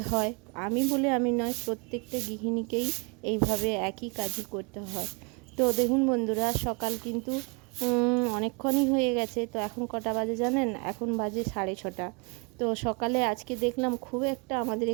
হয়। আমি বলে আমি নয়, প্রত্যেকটা গৃহিণীকেই এইভাবে একই কাজই করতে হয়। তো দেখুন বন্ধুরা, সকাল কিন্তু অনেকক্ষণই হয়ে গেছে। তো এখন কটা বাজে জানেন? এখন বাজে 6:30। তো সকালে আজকে দেখলাম খুব একটা আমাদের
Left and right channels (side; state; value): left; quieter; 32.1 dB